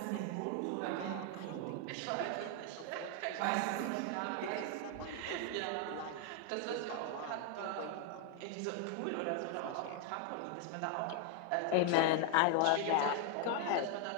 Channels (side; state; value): both; different; correlation 0.00